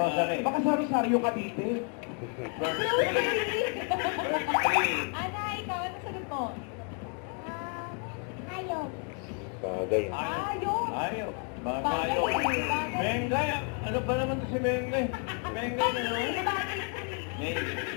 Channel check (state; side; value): quieter; right; 36.6 dB